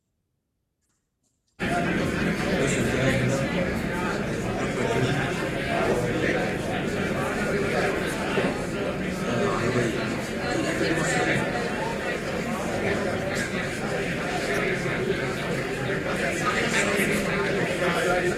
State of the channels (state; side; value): identical; both; correlation 1.00